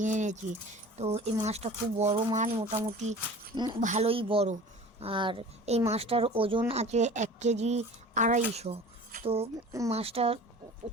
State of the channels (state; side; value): normal; both; correlation 0.41